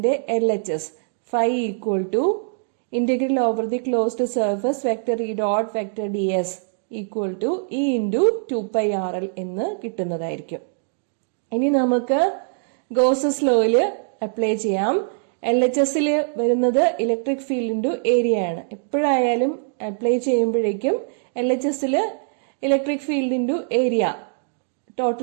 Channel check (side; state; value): left; silent; digital silence